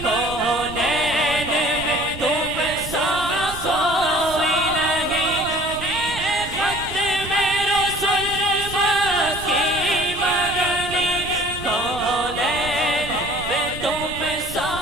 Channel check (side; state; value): right; noise; rumble, 12 dB below the sound